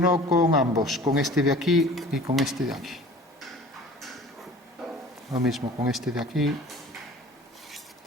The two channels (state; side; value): normal; both; correlation 0.45